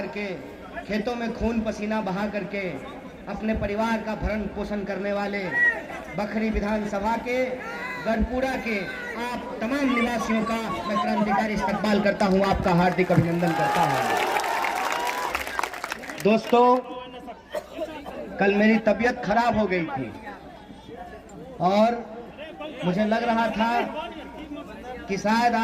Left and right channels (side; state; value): both; identical; correlation 1.00